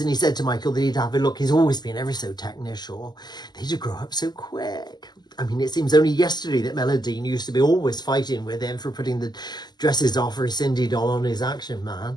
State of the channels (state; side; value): late; right; 0.21 ms